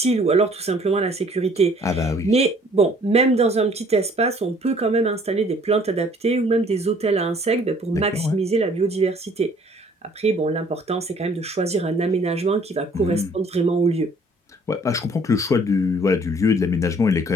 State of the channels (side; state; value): both; normal; correlation 0.57